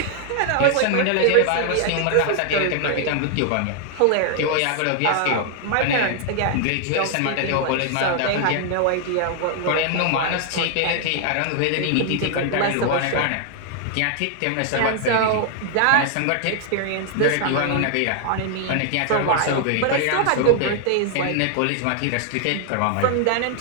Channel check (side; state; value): both; different; correlation 0.00